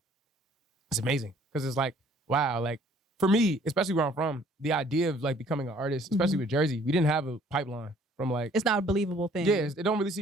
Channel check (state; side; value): normal; both; correlation 0.58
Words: it's amazing because it's like, wow, like for me, especially where I'm from, the idea of like becoming an artist, especially with Jersey, we didn't have a pipeline from like... It's not a believable thing. Yeah, it don't really